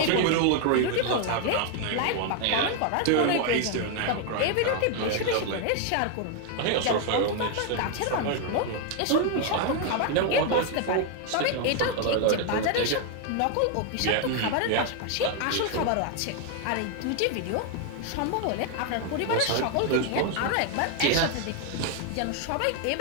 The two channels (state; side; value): different; both; correlation 0.01